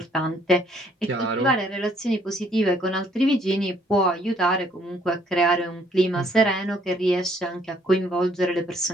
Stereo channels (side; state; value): both; normal; correlation 0.64